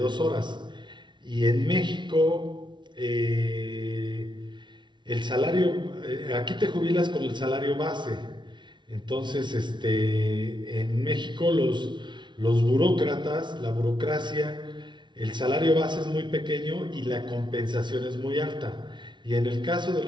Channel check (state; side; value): late; left; 0.23 ms